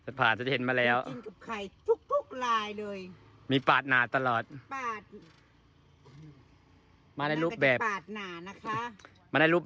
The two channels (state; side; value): identical; both; correlation 1.00